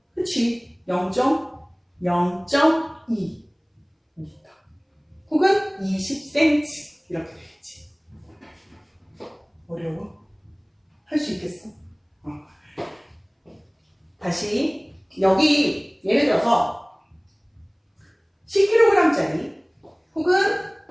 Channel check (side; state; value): both; identical; correlation 1.00